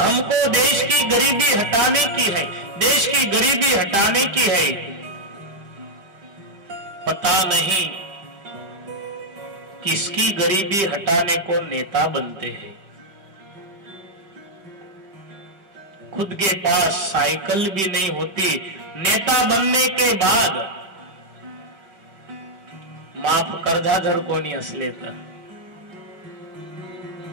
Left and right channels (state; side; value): late; left; 5.1 ms